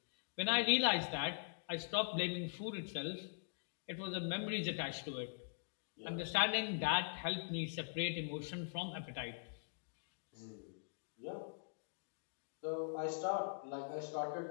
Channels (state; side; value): silent; right; digital silence